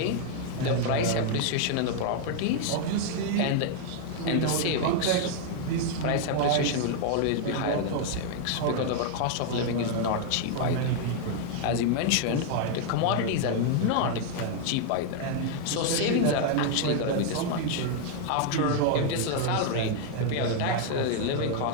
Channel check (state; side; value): different; both; correlation 0.00